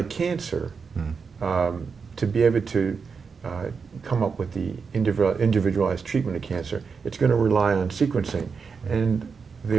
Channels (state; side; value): quieter; left; 5.5 dB